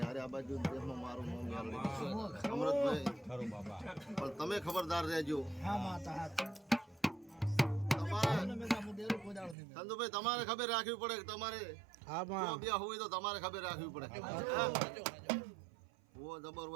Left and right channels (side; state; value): left; drops out; at 9.6 s